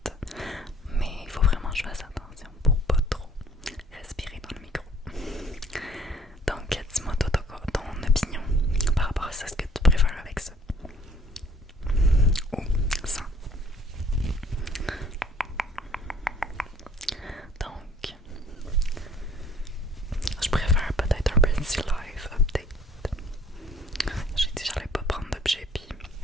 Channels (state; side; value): normal; both; correlation 0.57